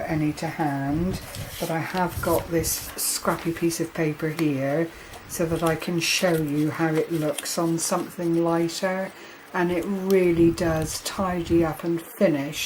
to hand, but I have got this scrappy piece of paper here so that I can show you how it looks on something lighter, and it really does tidy up and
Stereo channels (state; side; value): identical; both; correlation 1.00